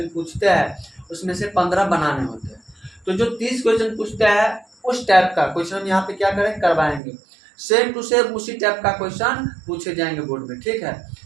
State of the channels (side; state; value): left; drops out; at 7.0 s